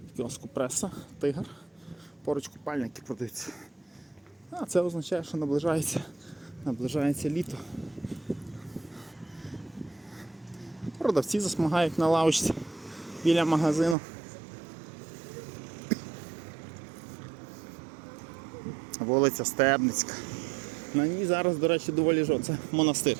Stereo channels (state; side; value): drops out; left; at 14.0 s